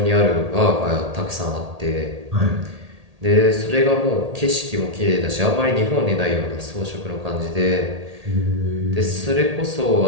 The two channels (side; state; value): left; late; 1.8 ms